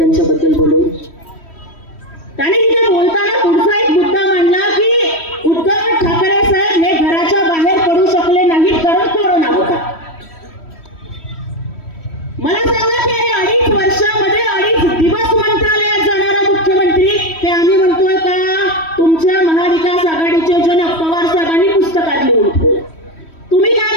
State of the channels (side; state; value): right; late; 3.1 ms